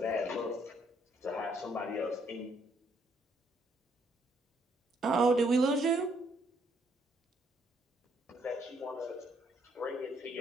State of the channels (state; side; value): normal; both; correlation 0.70